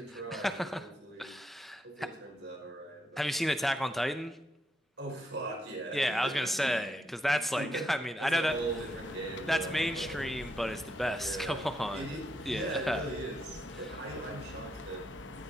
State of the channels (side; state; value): both; normal; correlation 0.80